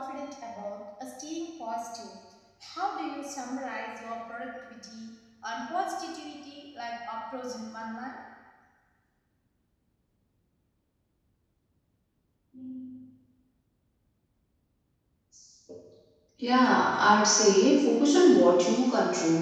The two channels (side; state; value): both; identical; correlation 1.00